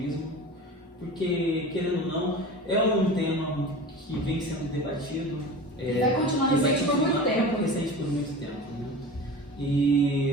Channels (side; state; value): both; normal; correlation 0.34